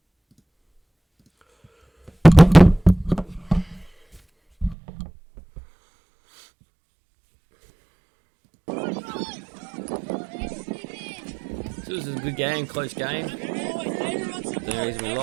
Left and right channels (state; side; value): drops out; left; at 4.8 s